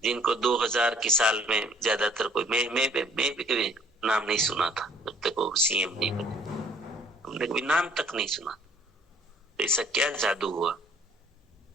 जिनको 2000 के साल में ज्यादातर कोई मैं भी कभी नाम नहीं सुना था जब तक वो सीएम नहीं बने, हमने कभी नाम तक नहीं सुना। तो ऐसा क्या जादू हुआ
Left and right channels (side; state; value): both; normal; correlation 0.58